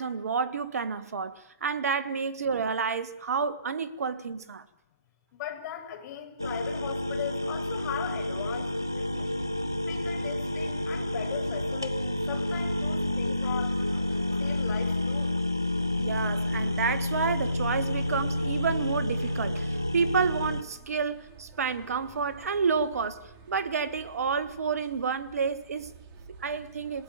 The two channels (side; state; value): both; inverted; correlation -0.66